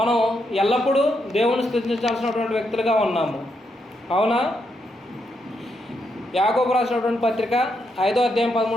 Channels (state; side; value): normal; both; correlation 0.80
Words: ఎల్లప్పుడూ దేవుణ్ణి స్తుతించాల్సినటువంటి వ్యక్తులుగా ఉన్నాము. అవునా? యాకోబు రాసినటువంటి పత్రిక 5వ అధ్యాయం